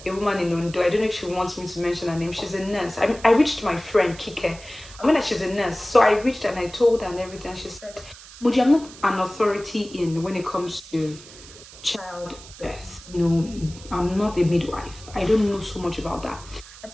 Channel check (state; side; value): noise; right; hiss, 18 dB below the sound